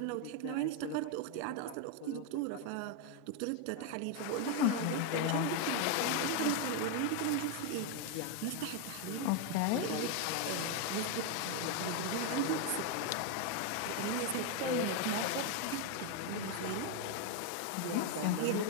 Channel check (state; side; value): different; both; correlation 0.01